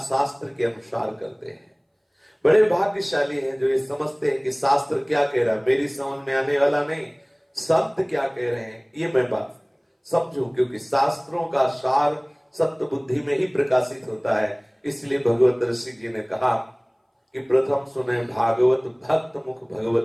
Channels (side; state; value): both; identical; correlation 1.00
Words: शास्त्र के अनुसार करते हैं। बड़े भाग्यशाली हैं जो ये समझते हैं कि शास्त्र क्या कह रहा है, मेरी समझ में आने वाला नहीं, संत क्या कह रहे हैं ये मैं बात समझूं, क्योंकि शास्त्रों का सार सत्य बुद्धि में ही प्रकाशित होता है। इसलिए भगवत ऋषि जी ने कहा कि प्रथम सुने भागवत भक्त मुख भगवत